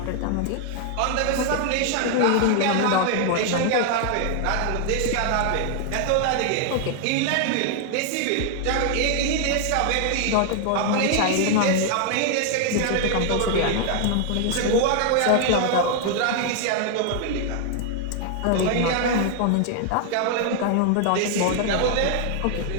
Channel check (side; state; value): both; different; correlation 0.00